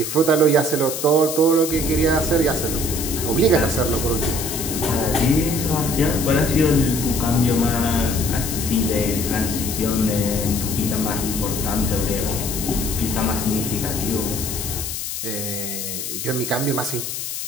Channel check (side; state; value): left; noise; hiss, 5 dB below the sound